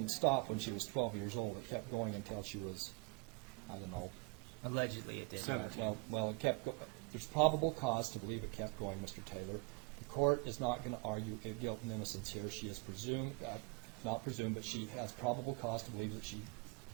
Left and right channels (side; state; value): left; quieter; 29.1 dB